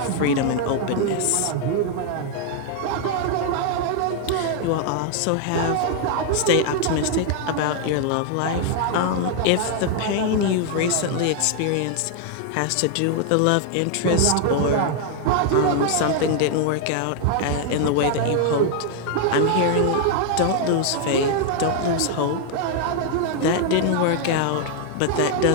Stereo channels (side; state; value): both; different; correlation 0.00